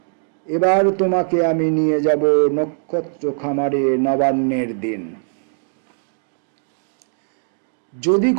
এবার তোমাকে আমি নিয়ে যাব নক্ষত্র খামারে নবান্নের দিন। যদি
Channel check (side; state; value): left; silent; digital silence